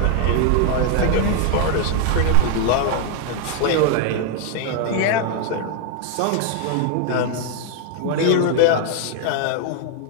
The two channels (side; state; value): both; different; correlation 0.01